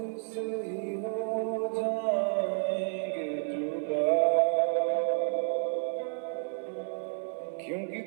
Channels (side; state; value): left; silent; digital silence